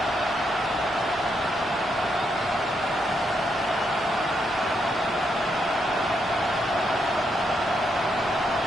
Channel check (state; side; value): normal; both; correlation 0.79